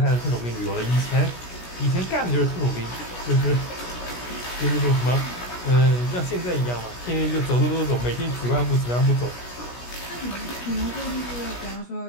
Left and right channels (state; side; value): late; right; 17 ms